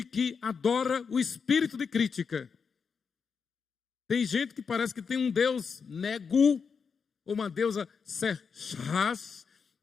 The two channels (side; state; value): right; quieter; 5.8 dB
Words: que adora o espírito de crítica. Tem gente que parece que tem um Deus Negu, ou uma deusa Serchas,